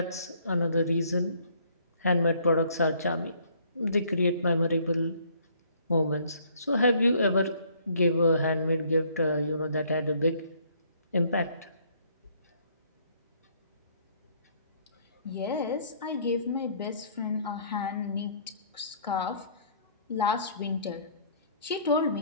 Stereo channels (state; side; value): inverted; both; correlation -0.61